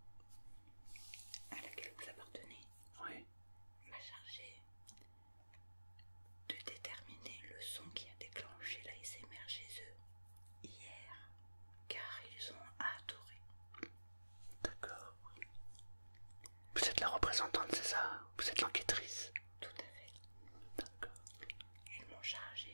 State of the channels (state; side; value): inverted; both; correlation -1.00